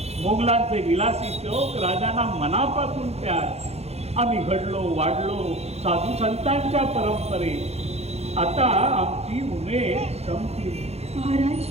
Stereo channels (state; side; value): late; left; 0.30 ms